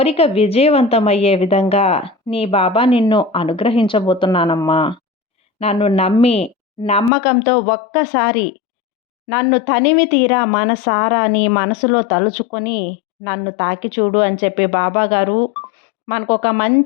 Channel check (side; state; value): right; drops out; at 7.1 s